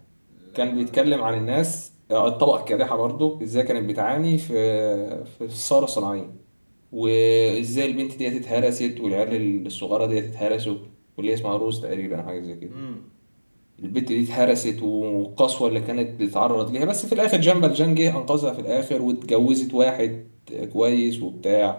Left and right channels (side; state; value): both; inverted; correlation -1.00